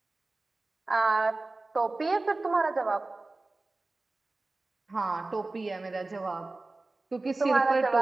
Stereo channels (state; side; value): quieter; left; 3.2 dB